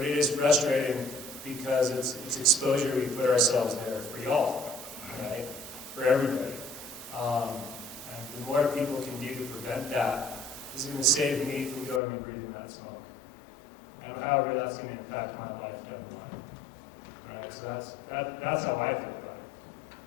it is frustrating because it's exposure we put ourselves there for y'all, right? For everybody. And the more people can do to prevent that is going to save me from going and breathing that smoke. And however that's going to impact my life down the line. Right? So that's how I feel about it.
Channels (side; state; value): right; drops out; at 12.0 s